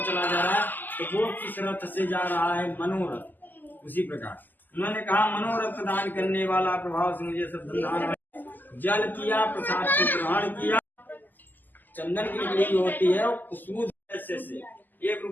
चला जा रहा है, तो वो किस रथ से जा रहा है, मनोरथ। उसी प्रकार उन्होंने कहा मनोरथ प्रदान करने वाला प्रभाव से मुझे सब धन जल किया, प्रसाद को ग्रहण किया। चंदन की लकड़ी होती है खुशबू से 1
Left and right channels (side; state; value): right; late; 0.087 ms